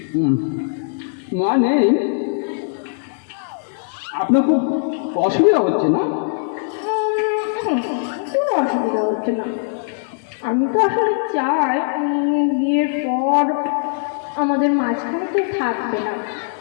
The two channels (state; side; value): silent; right; digital silence